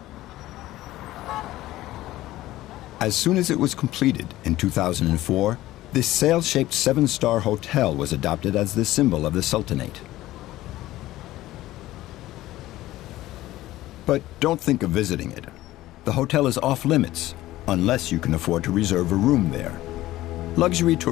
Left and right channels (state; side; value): quieter; right; 16.0 dB